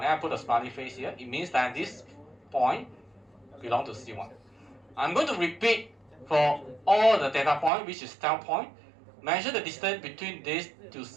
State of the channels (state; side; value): drops out; left; at 7.7 s